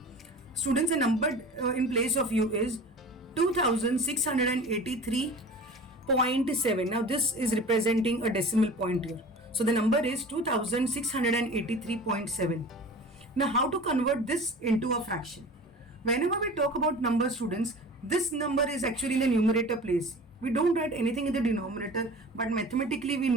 Students, the number in place of you is 2683.7. Now this is representing a decimal point here. So the number is 2683.7. Now how to convert this into a fraction? Whenever we talk about numbers, students, this number is actually in the numerator place. We don't write anything in the denominator, but mathematically we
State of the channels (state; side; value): normal; both; correlation 0.39